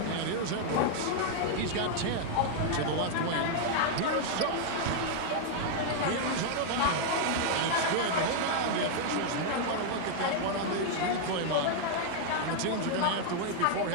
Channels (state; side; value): different; both; correlation 0.00